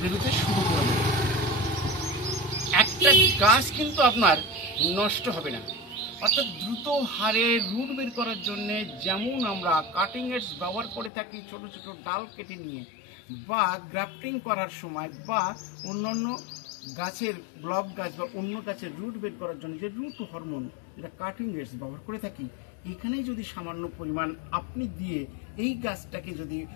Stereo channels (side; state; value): right; drops out; at 11.1 s